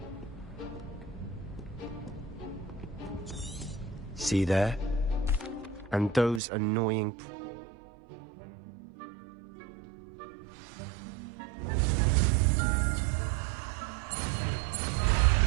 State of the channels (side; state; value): left; drops out; at 6.4 s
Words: See there? And those annoying...